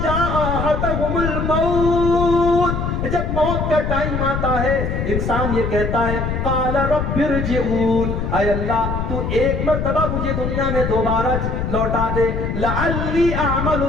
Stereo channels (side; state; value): left; noise; rumble, 2 dB below the sound